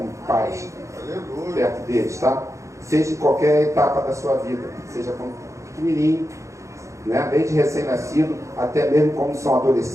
pais, perto deles, tá? Seja em qualquer etapa da sua vida, seja como pequenininho, né? Desde recém-nascido, até mesmo quando são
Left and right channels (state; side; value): late; left; 0.15 ms